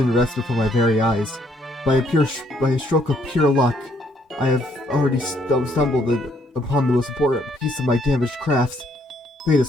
rests before my very eyes. By a stroke of pure luck, I have already stumbled upon the most important piece of my damaged craft. Fate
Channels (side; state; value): both; normal; correlation 0.69